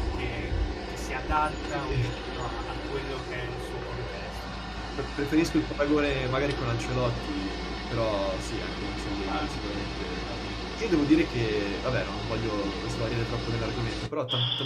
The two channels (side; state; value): both; identical; correlation 1.00